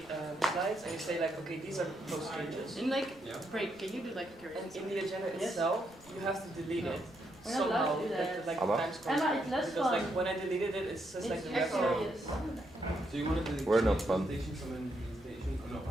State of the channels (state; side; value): noise; right; rumble, 29 dB below the sound